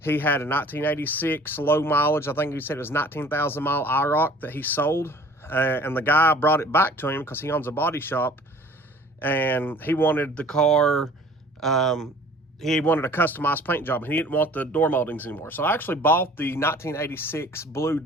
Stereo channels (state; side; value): normal; both; correlation 0.50